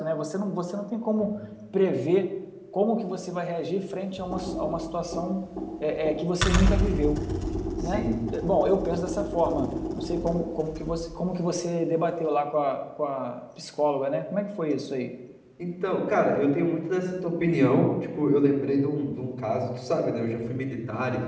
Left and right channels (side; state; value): both; identical; correlation 1.00